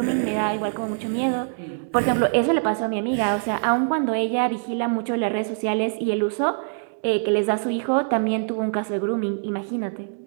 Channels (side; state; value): left; silent; 63 dB below the other